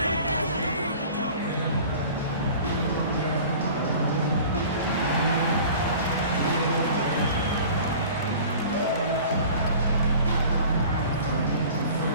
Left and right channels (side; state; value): both; inverted; correlation -0.43